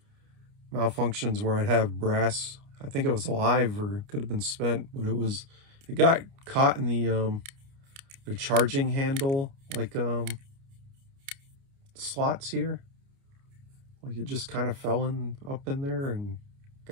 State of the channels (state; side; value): late; left; 29 ms